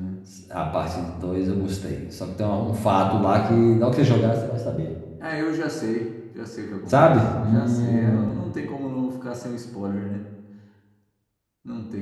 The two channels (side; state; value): both; identical; correlation 1.00